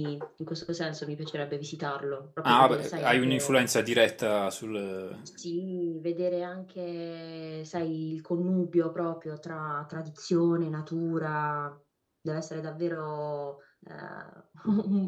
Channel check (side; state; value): both; identical; correlation 1.00